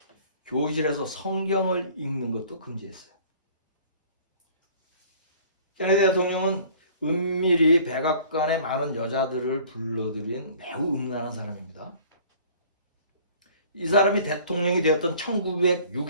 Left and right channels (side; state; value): both; inverted; correlation -0.51